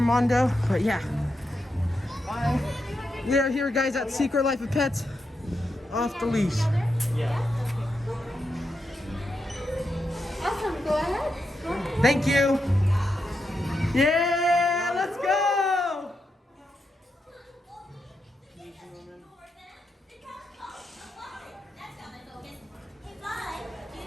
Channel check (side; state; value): both; normal; correlation 0.85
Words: but yeah. Bye. We are here, guys, at Secret Life of Pets. Off the leash. Yeah. Awesome. Go ahead. Thank you. Yeah, let's go.